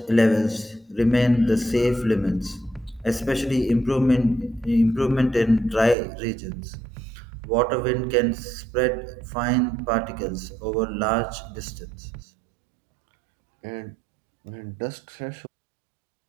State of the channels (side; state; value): left; drops out; at 6.0 s